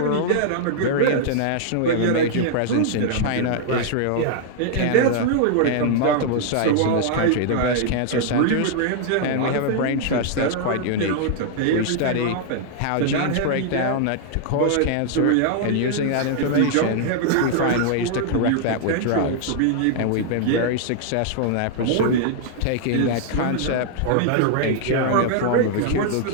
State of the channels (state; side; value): different; both; correlation -0.01